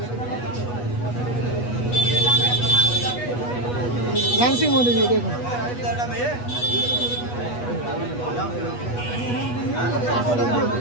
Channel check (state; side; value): late; right; 8.2 ms